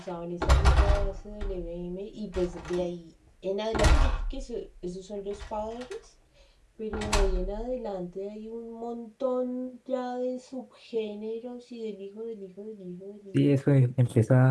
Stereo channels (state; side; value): identical; both; correlation 1.00